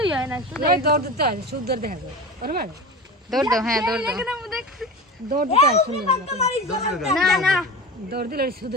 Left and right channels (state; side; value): normal; both; correlation 0.30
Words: হয় না শুধু দৌড় দিতে হয় সুন্দর দেখা যায় দৌড় দাও হ্যাঁ দৌড় দাও দৌড় দিতে হয় সুন্দর না দৌড় দিলে শুধু